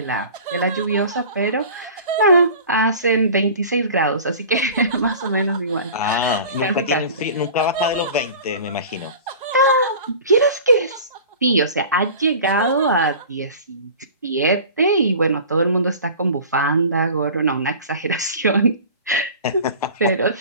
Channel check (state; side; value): inverted; both; correlation -0.40